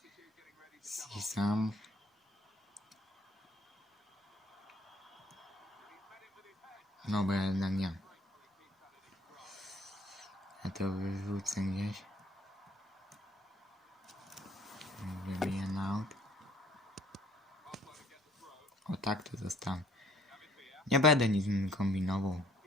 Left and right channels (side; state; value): both; normal; correlation 0.60